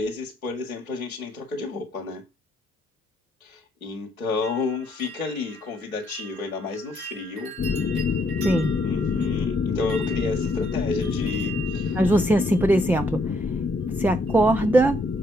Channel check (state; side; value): normal; both; correlation 0.71